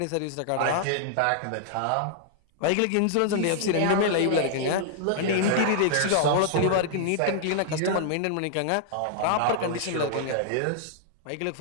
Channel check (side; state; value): both; different; correlation -0.01